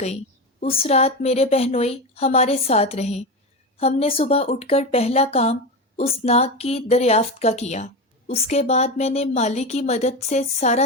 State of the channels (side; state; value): both; normal; correlation 0.19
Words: اس رات میرے بہنوئی ہمارے ساتھ رہے۔ ہم نے صبح اٹھ کر پہلا کام اس ناگ کی دریافت کا کیا۔ اس کے بعد میں نے مالی کی مدد سے سارا